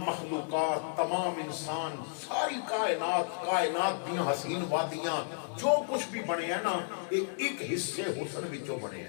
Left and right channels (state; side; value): silent; right; digital silence